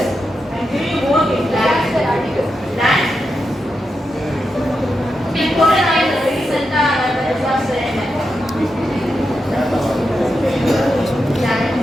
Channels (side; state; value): both; normal; correlation 0.87